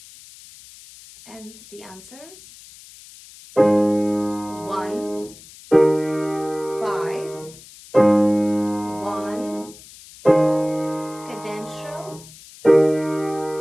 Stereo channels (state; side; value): noise; left; hiss, 20 dB below the sound